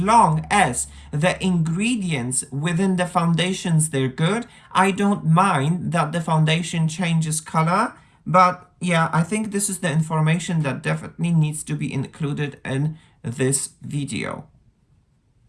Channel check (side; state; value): both; identical; correlation 1.00